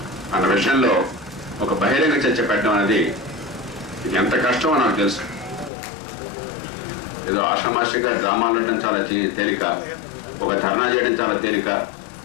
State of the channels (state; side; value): drops out; right; at 5.7 s